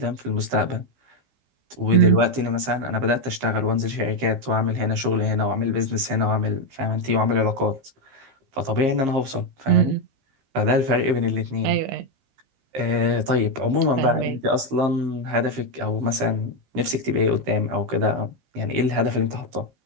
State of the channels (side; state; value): left; late; 15 ms